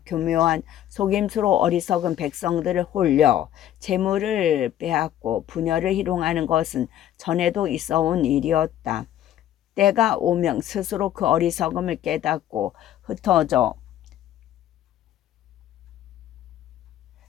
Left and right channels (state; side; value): quieter; right; 11.7 dB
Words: 교묘한 속임수로 어리석은 백성들을 홀려 재물을 빼앗고 분열을 희롱하는 것은 전에도 있어온 일이었다. 때가 오면 스스로 그 어리석음을 깨닫고 흩어져